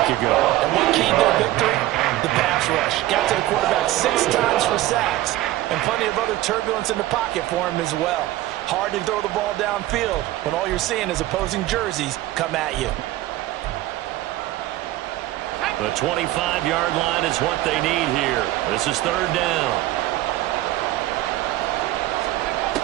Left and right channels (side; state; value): left; quieter; 15.9 dB